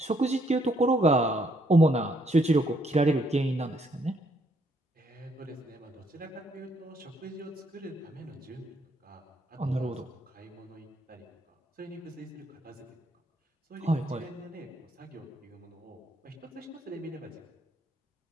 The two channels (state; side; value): normal; both; correlation 0.71